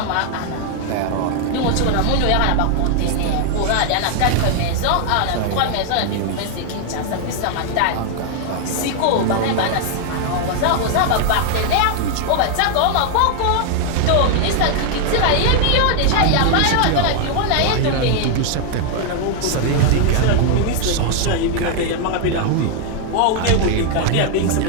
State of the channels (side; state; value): both; different; correlation 0.00